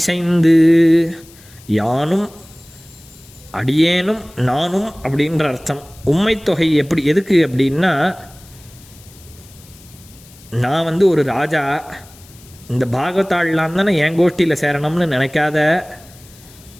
யானும் அடியேனும் நானும் அப்படின்ற அர்த்தம். உம்மைத்தொகை எதுக்கு அப்படின்னா, நான் ஒரு ராஜா, இந்த பாகவதாள்லாம் தானே என் கோஷ்டியில் சேரணும்னு நினைக்காத,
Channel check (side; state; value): left; noise; hiss, 24 dB below the sound